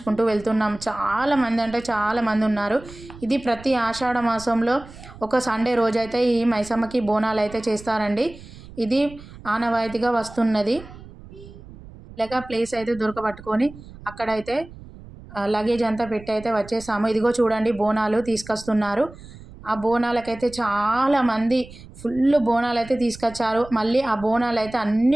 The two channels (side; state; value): right; noise; rumble, 18 dB below the sound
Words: వెళ్తున్నాం. చాలామంది ఉన్నారు. ఇది ప్రతి ఆషాఢ మాసంలో ఒక సండే రోజైతే ఈ మైసమ్మకి బోనాలు అయితే చేస్తారండి. ఇది ఆనవాయితీగా వస్తున్నది. ఇలాగా ప్లేస్ అయితే దొరకబట్టుకొని అక్కడైతే లగేజ్ అంతా పెట్టి అయితే వచ్చేసాము. ఇదిగో చూడండి, బోనాలు తీసుకొస్తున్నారు. ఆ బోనాలకైతే చాలామంది ఫుల్ బోనాలు అయితే తీసుకొచ్చారు. మళ్ళీ ఆ బోనాలు అయితే అన్నీ